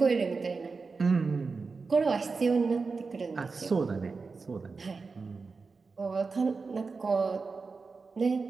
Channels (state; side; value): quieter; left; 4.5 dB